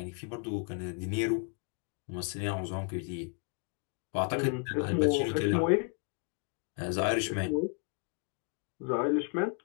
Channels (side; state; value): right; quieter; 38.4 dB